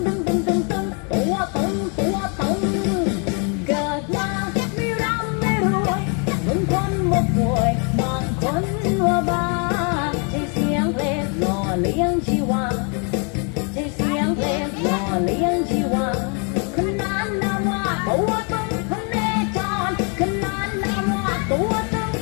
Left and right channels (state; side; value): quieter; right; 37.3 dB